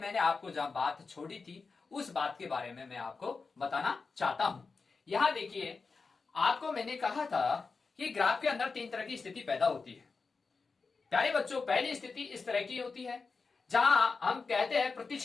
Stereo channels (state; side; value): quieter; right; 4.5 dB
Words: आपको जहां बात छोड़ी थी उस बात के बारे में मैं आपको बताना चाहता हूं। यहां देखिए, आपको मैंने कहा था कि ग्राफ के अंदर 3 तरह की स्थिति पैदा होती है। प्यारे बच्चों, पहली स्थिति इस तरह की होती है जहां हम कहते हैं